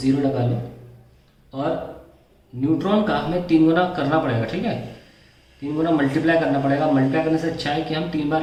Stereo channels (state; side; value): identical; both; correlation 1.00